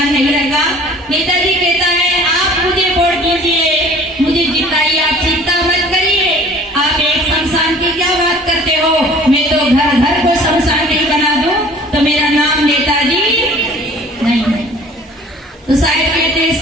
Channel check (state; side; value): normal; both; correlation 0.49